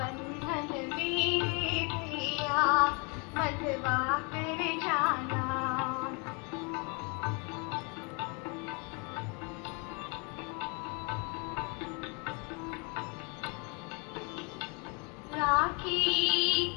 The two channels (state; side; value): quieter; right; 32.8 dB